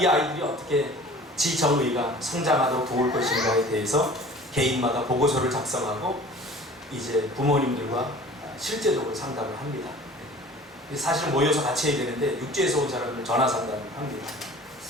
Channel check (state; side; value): normal; both; correlation 0.45